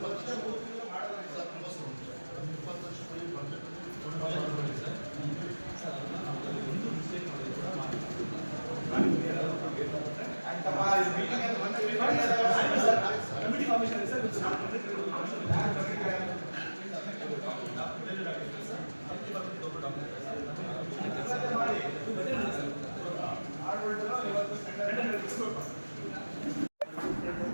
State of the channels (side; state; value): both; inverted; correlation -1.00